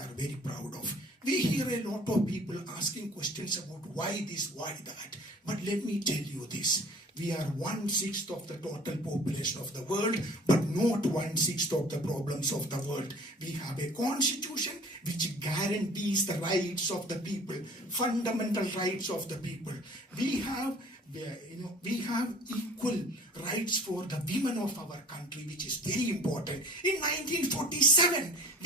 very proud of. We hear a lot of people asking questions about why this, why that. But let me tell you this. We are 1/6 of the total population of the world, but not 1/6 of the problems of the world. We have a constitution which guarantees the rights of the people, fundamental rights of the people. We have equal rights for the women of our country, which is very important. In 1947,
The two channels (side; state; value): both; normal; correlation 0.48